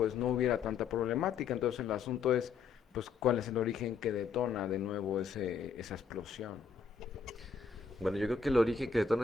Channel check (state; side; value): quieter; right; 5.7 dB